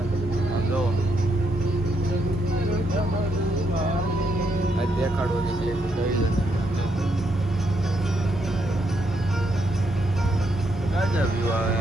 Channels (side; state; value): both; normal; correlation 0.77